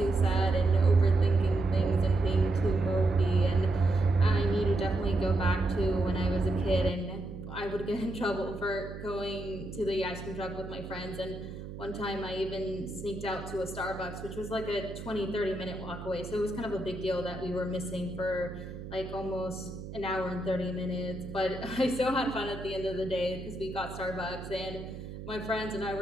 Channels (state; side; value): noise; right; hum, 10 dB below the sound